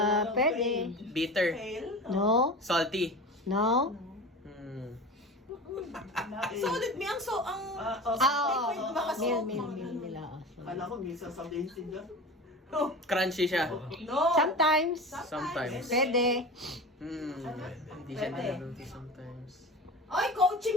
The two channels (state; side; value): normal; both; correlation 0.32